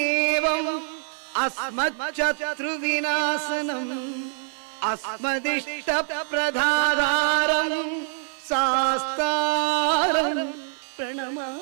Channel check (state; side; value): silent; left; 60 dB below the other